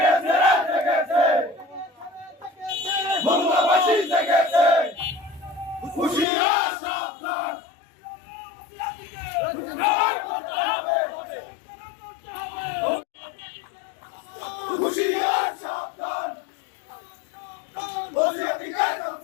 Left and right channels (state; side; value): drops out; right; at 6.2 s